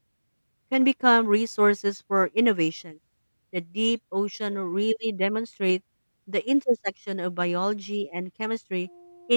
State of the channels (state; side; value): inverted; both; correlation -1.00